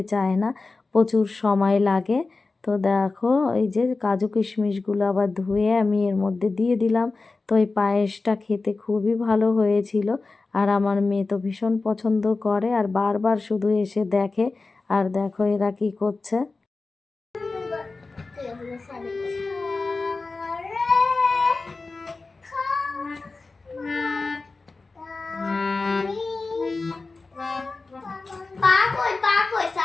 চায় না, প্রচুর সময় লাগে। তো দেখো এই যে কাজু কিশমিশগুলো আবার ধুয়ে আমি এর মধ্যে দিয়ে দিলাম। তো এই পায়েসটা খেতে খুবই ভালো হয়েছিল, আর আমার মেয়ে তো ভীষণ পছন্দ করে আর বারবার শুধু এসে দেখে। আর দেখো এরা কি করছে।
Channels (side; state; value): right; quieter; 3.8 dB